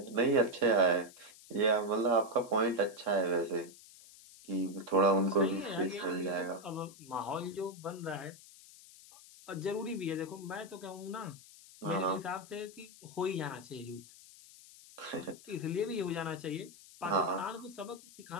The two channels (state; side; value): noise; left; hiss, 20 dB below the sound